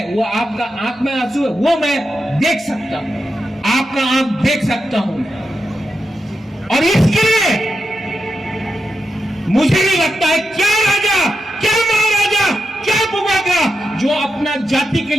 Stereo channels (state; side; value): normal; both; correlation 0.88